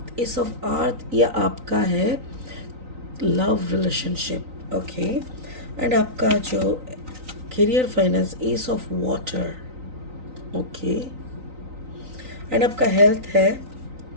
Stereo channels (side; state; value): left; late; 3.9 ms